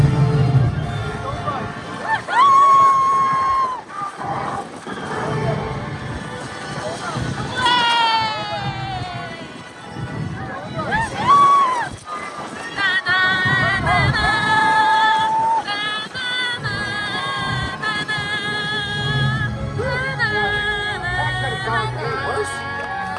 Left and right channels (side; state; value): both; identical; correlation 1.00